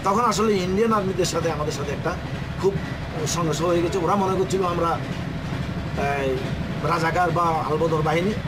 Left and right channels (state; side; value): identical; both; correlation 1.00